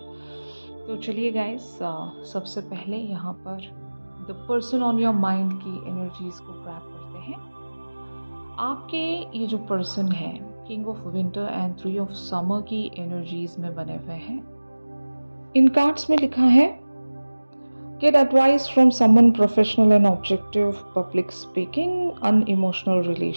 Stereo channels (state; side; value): inverted; both; correlation -1.00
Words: तो चलिए गाइस, सबसे पहले यहाँ पर the person on your mind की एनर्जीज को ग्रैब करते हैं। आपके ये जो पर्सन है king of winter and 3 of summer की एनर्जीज में बने हुए हैं। इन कार्ड्स में लिखा है get advice from someone professional and objective, public speaking, unemotional